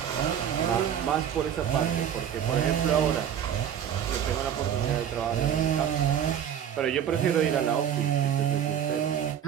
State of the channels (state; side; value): quieter; left; 9.2 dB